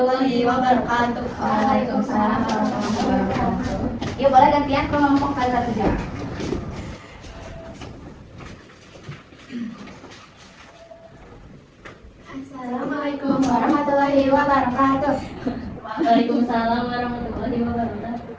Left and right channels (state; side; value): identical; both; correlation 1.00